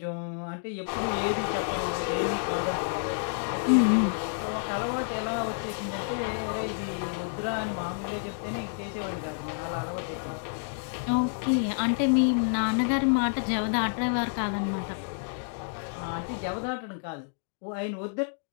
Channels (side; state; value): right; silent; digital silence